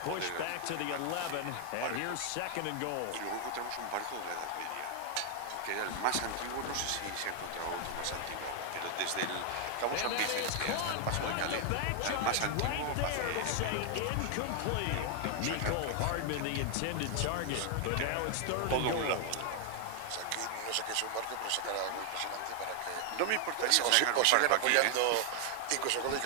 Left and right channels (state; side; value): different; both; correlation 0.00